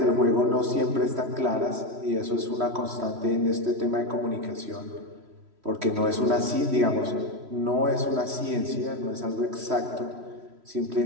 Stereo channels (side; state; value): left; late; 3.1 ms